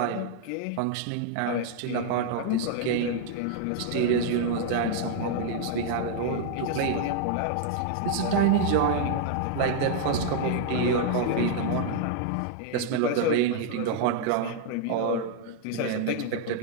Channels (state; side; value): different; both; correlation 0.00